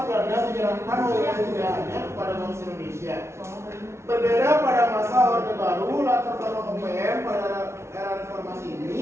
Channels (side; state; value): left; late; 0.13 ms